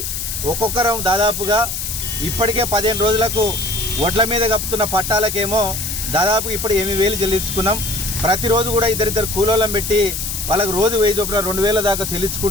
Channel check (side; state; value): left; noise; hiss, 4 dB below the sound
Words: ఒక్కొక్కరం దాదాపుగా ఇప్పటికే 15 రోజులకు వడ్ల మీద కప్పుతున్న పట్టాలకేమో దాదాపు ఇప్పుడు 8,000 చెల్లించుకున్నాం. ప్రతిరోజు కూడా ఇద్దరిద్దరు కూలోళ్ళం పెట్టి వాళ్ళకు రోజు 1000 చొప్పున 2,000 దాకా